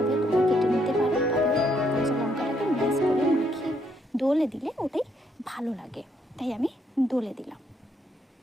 তোমরা কেটে নিতে পারো, তবে কাঁচা লঙ্কাটাকে ম্যাশ করে মাখিয়ে দোলে দিলে ওটাই ভালো লাগে, তাই আমি দোলে দিলাম।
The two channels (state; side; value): normal; both; correlation 0.72